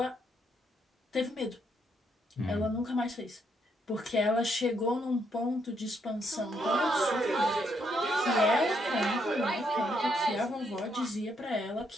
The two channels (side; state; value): both; normal; correlation 0.75